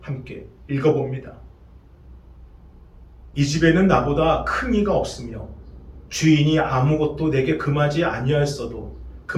함께 읽어봅니다. 이 집에는 나보다 큰 이가 없으며 주인이 아무것도 내게 금하지 아니하였어도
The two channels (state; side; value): identical; both; correlation 1.00